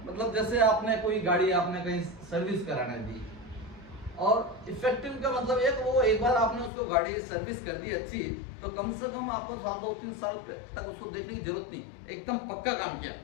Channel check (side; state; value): right; drops out; at 6.7 s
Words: मतलब जैसे आपने कोई गाड़ी आपने कहीं सर्विस कराने दी, और इफेक्टिव का मतलब एक बार आपने उसको गाड़ी सर्विस कर दी अच्छी, तो कम से कम आपको 2-3 साल तक उसको देखने की जरूरत नहीं, एकदम पक्का काम किया,